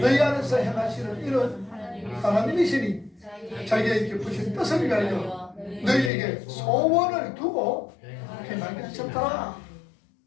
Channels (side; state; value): right; drops out; at 6.1 s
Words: 너희 안에서 행하시는 이런 하나님이시니 자기의 깊으신 뜻을 위하여 너희에게 소원을 두고 행하게 하셨더라.